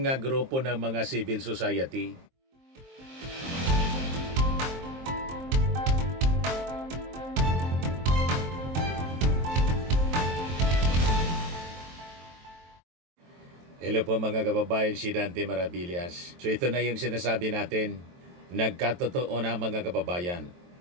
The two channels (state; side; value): late; left; 23 ms